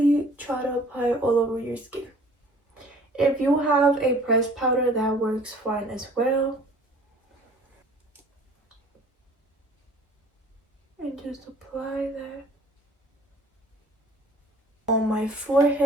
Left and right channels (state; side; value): normal; both; correlation 0.52